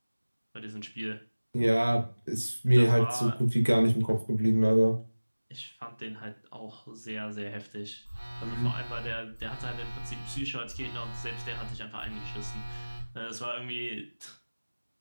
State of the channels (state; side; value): inverted; both; correlation -1.00